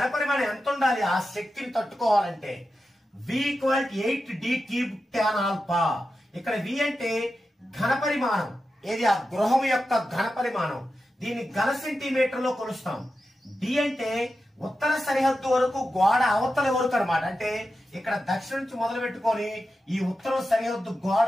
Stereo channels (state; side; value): normal; both; correlation 0.91